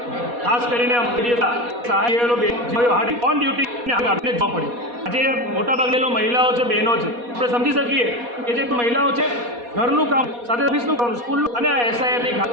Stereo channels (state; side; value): late; left; 4.2 ms